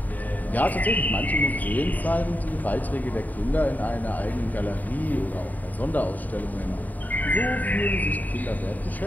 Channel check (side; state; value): right; late; 0.081 ms